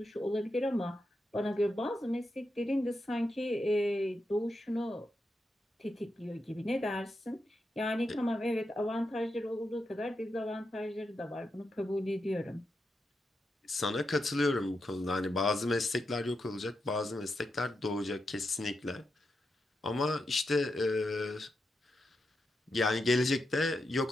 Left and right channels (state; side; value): normal; both; correlation 0.86